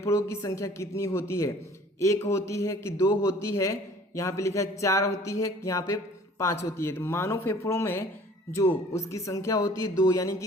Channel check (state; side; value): normal; both; correlation 0.51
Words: की संख्या कितनी होती है? 1 होती है कि 2 होती है? यहाँ पे लिखा है 4 होती है, यहाँ पे 5 होती है। तो मानव फेफड़ों में जो उसकी संख्या होती है 2, यानी